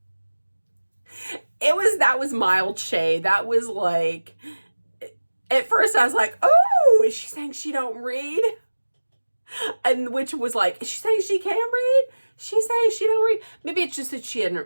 that was mild shade. That was like, at first I was like, oh, is she saying she don't read? And which was like, is she saying she can read? She's saying she don't read. Maybe it's just that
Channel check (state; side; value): inverted; both; correlation -1.00